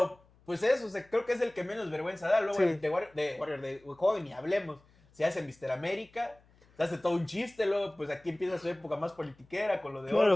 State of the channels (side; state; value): left; noise; hum, 30 dB below the sound